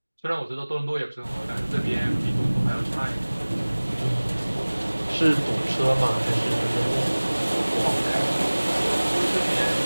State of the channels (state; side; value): inverted; both; correlation -1.00